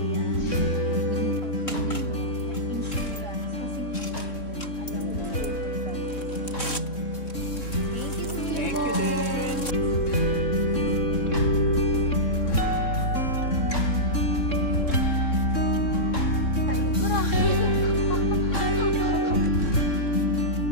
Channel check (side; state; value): right; late; 3.7 ms